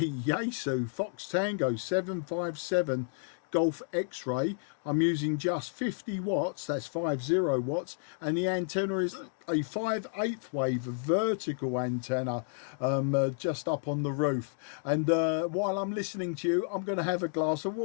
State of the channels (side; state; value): right; silent; digital silence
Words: Fox Tango 757 Golf X-Ray. I'm using just 50 watts, that's 50 watts, and the antenna is a 5/8 wave vertical antenna just up on the roof. And while I'm listening to you, I'm going to have a glass of